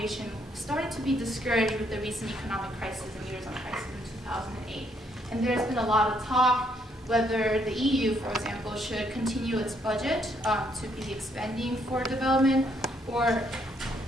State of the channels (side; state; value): both; normal; correlation 0.71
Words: started to be discouraged with the recent economic crisis and Eurozone crisis in 2008. And there's been a lot of talk whether the EU, for example, should continue its budget to be expending for development, or